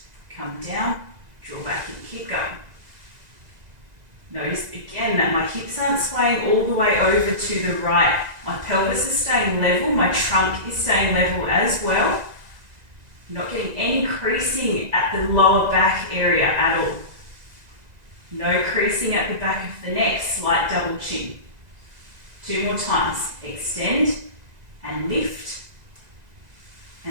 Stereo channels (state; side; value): late; left; 2.0 ms